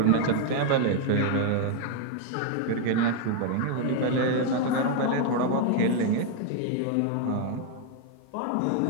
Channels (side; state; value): both; different; correlation 0.00